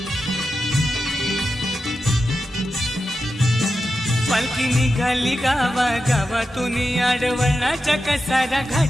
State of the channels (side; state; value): both; normal; correlation 0.90